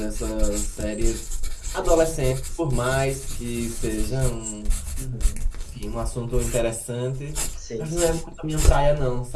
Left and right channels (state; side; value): identical; both; correlation 1.00